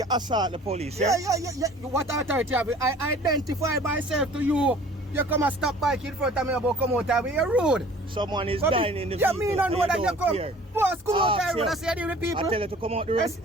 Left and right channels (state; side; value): normal; both; correlation 0.49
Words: assault the police. Yeah. What authority have you? I identify myself to you. You come and stop bike in front of me about come out of me. You're rude. Someone is dying in the vehicle. Yeah, me don't know that you come. Care. Boss, come out the road. I say the people. I tell you to come out the